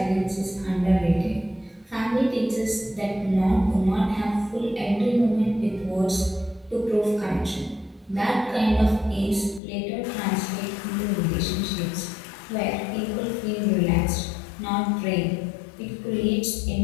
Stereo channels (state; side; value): drops out; right; at 9.6 s